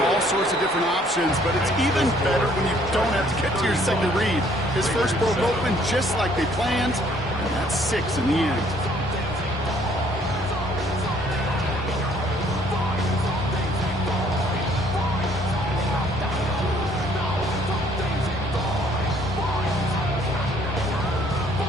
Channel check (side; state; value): both; normal; correlation 0.62